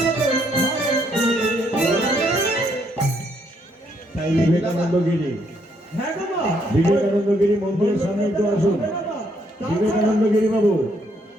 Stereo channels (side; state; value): both; normal; correlation 0.72